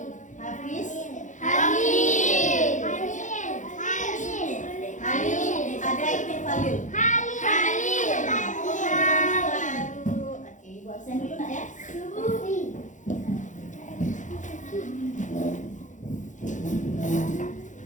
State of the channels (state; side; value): late; right; 0.36 ms